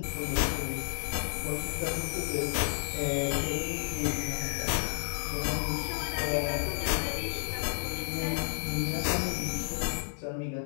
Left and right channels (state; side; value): silent; right; 57 dB below the other